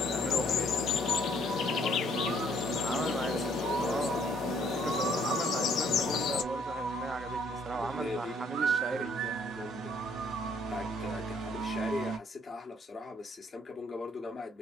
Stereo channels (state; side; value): normal; both; correlation 0.64